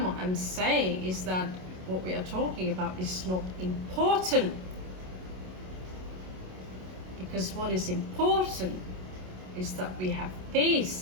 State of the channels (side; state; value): left; late; 27 ms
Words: what I'm saying, is that what we are talking about is not important. Because what is important is that we have